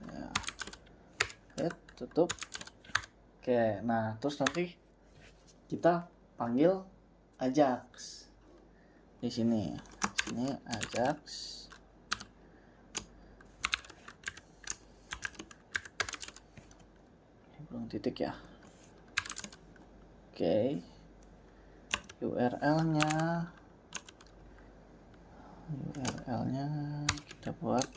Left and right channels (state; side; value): identical; both; correlation 1.00